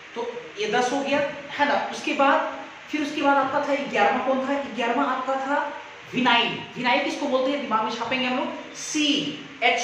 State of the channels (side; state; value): both; identical; correlation 1.00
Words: तो ये 10 हो गया है ना। उसके बाद फिर उसके बाद आपका था 11वां, कौन था 11वां, आपका था विनाइल। विनाइल किसको बोलते हैं, दिमाग में छापेंगे हम लोग,